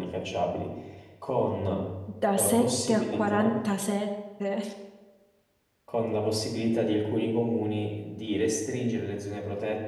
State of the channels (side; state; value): both; identical; correlation 1.00